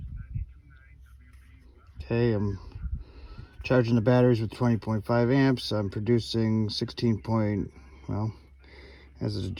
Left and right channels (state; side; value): identical; both; correlation 1.00